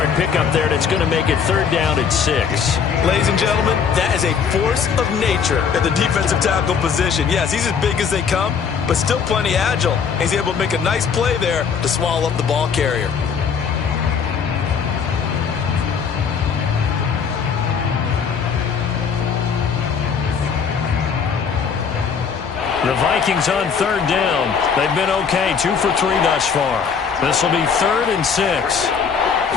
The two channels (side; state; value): right; quieter; 6.4 dB